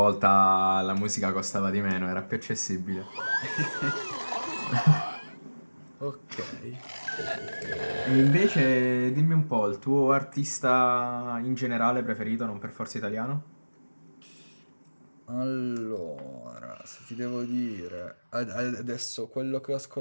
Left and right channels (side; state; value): both; inverted; correlation -1.00